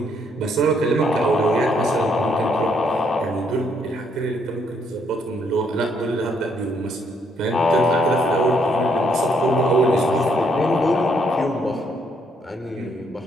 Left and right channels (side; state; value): both; normal; correlation 0.71